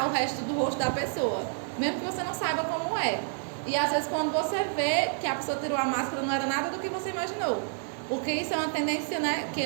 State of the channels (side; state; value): left; silent; 59 dB below the other